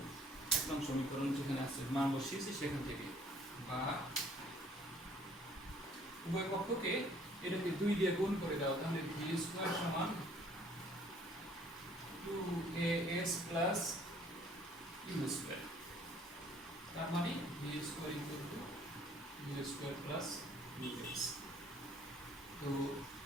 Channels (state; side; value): normal; both; correlation 0.58